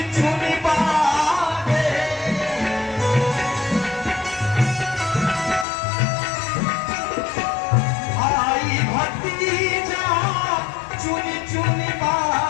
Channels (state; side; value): drops out; right; at 5.7 s